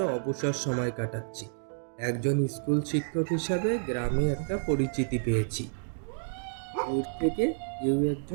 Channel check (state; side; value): silent; left; digital silence